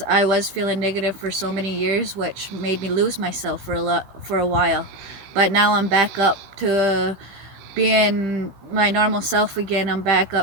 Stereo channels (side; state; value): left; late; 16 ms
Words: I was feeling negative for so many years, which made me lose myself for a while. But now I'm back up to being my normal self again. I'm back